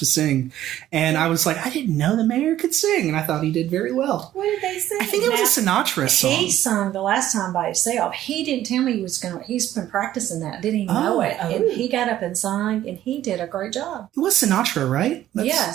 sing. And I was like, I didn't know the mayor could sing. And I thought he did very well. What did they sing? I think it was a Sinatra song. He sung the last time by himself. He didn't tell me he's been practicing that. Didn't even know it. And he got up and sang, and he did a great job. It was Sinatra, right?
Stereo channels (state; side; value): quieter; left; 12.8 dB